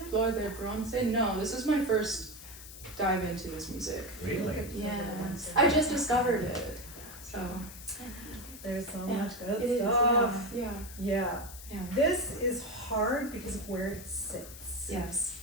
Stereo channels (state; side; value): noise; left; hiss, 14 dB below the sound